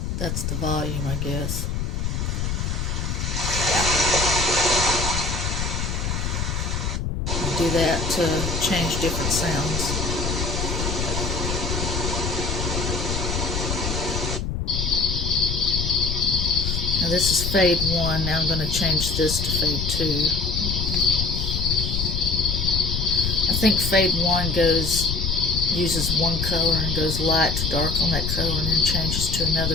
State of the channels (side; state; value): left; noise; rumble, 2 dB below the sound